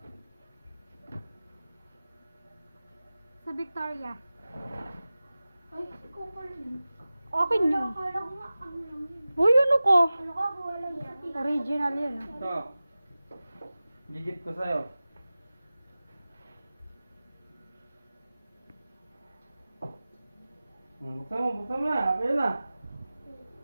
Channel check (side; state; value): both; inverted; correlation -0.97